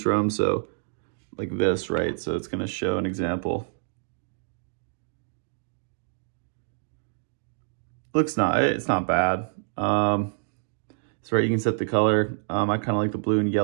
So like this, right? So it's going to show an example. It's not bad. So right, you can set the color. I kind of like the blue and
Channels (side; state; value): left; silent; digital silence